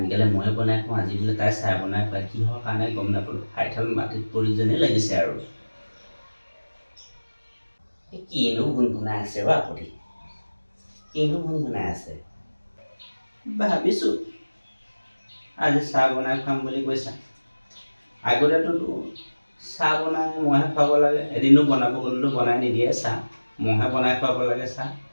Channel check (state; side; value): inverted; both; correlation -1.00